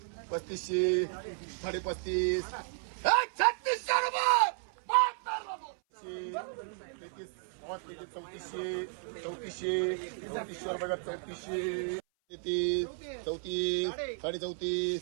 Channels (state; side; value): silent; left; 55 dB below the other